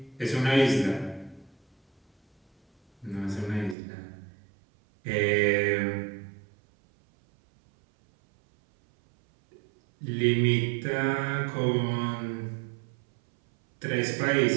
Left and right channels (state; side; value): drops out; left; at 3.8 s